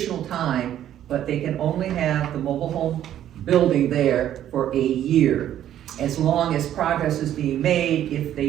time, but they can only have the mobile home building there for a year, as long as progress is being made, if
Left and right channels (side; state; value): left; quieter; 11.4 dB